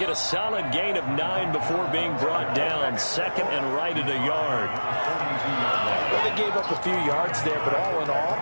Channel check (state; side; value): inverted; both; correlation -1.00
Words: a solid gain of 9 before being brought down. 2nd and right at a yard. Well, they gave up a few yards there, but all in all,